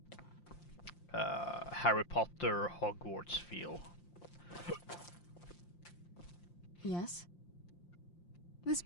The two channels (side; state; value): right; late; 5.7 ms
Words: Harry Potter Hogwarts feel. Yes? This